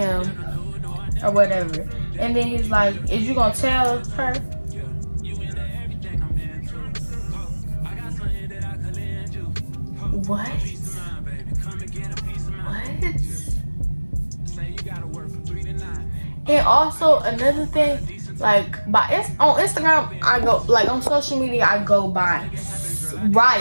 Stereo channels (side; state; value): both; inverted; correlation -1.00